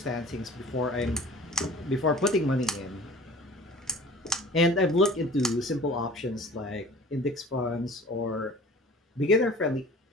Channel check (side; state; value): both; normal; correlation 0.45